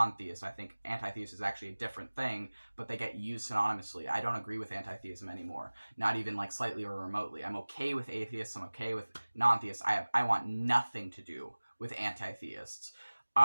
I think anti-theist is actually a different thing, but they get used synonymously. I don't agree with anti-theism anymore, not even like slightly or remotely. I'm okay with atheists. I'm okay with non-theists. I want nothing to do with anti-theists.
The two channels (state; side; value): inverted; both; correlation -1.00